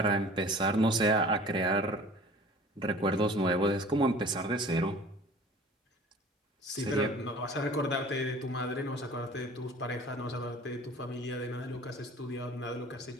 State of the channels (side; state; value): both; normal; correlation 0.46